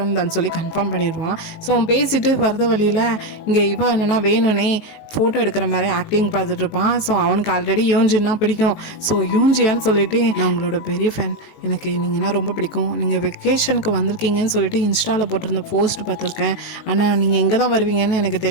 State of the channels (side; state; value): right; late; 19 ms